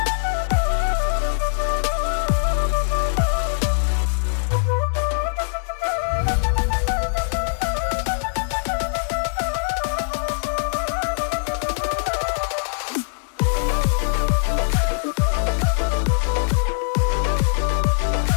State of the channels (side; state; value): right; silent; digital silence